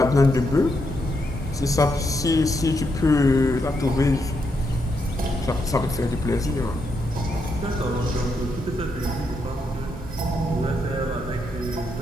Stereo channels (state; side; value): normal; both; correlation 0.80